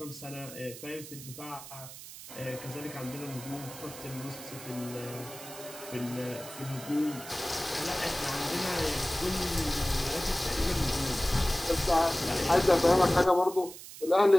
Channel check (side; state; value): right; noise; hiss, 14 dB below the sound